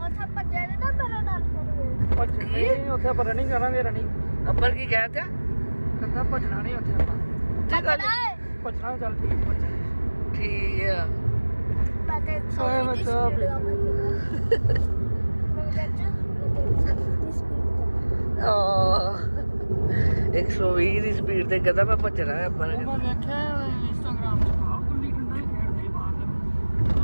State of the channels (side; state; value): both; inverted; correlation -1.00